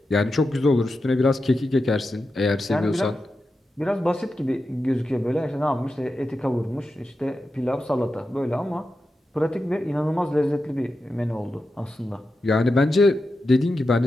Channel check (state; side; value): normal; both; correlation 0.90